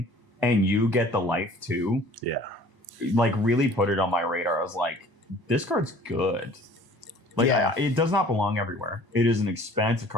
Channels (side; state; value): left; late; 1.0 ms